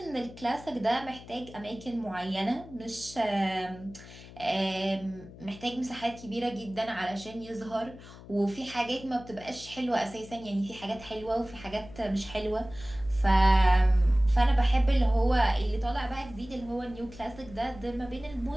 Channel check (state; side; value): noise; left; hum, 17 dB below the sound